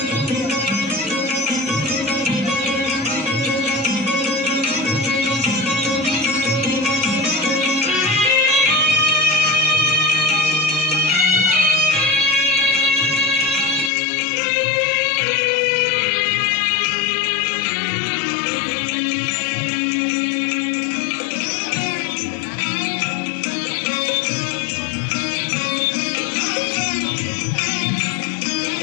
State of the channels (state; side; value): drops out; right; at 13.9 s